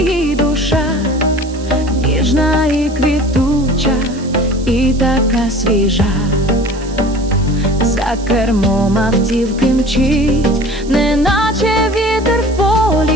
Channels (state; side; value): noise; right; hiss, 20 dB below the sound